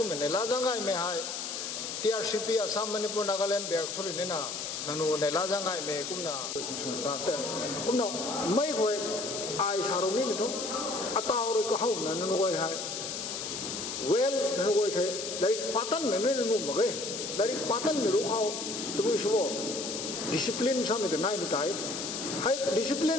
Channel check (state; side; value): noise; left; hiss, 5 dB below the sound